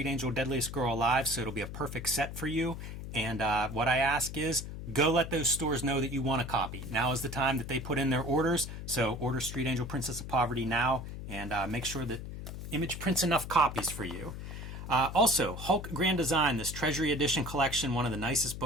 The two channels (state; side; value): noise; left; hum, 8 dB below the sound